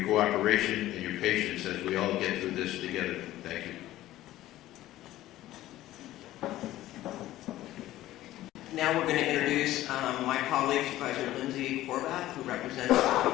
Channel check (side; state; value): right; quieter; 15.0 dB